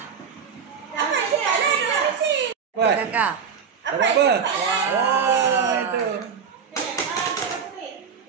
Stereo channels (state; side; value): quieter; left; 6.5 dB